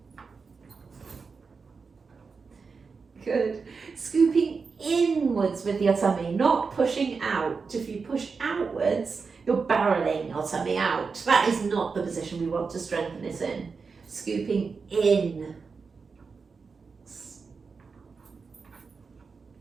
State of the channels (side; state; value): left; quieter; 5.0 dB